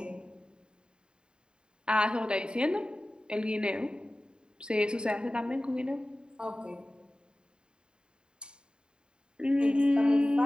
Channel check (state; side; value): late; left; 0.049 ms